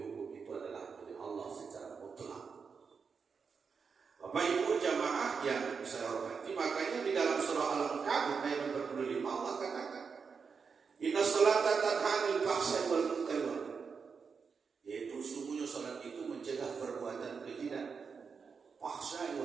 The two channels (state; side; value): quieter; left; 5.6 dB